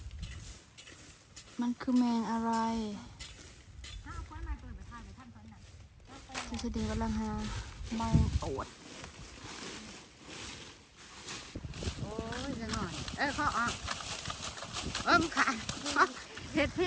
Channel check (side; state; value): both; identical; correlation 1.00